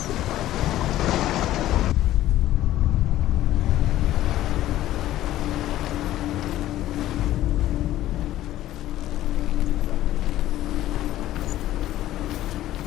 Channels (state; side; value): quieter; right; 14.1 dB